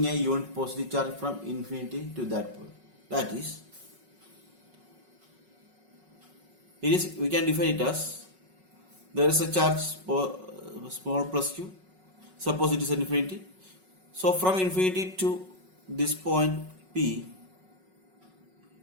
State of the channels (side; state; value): left; late; 5.4 ms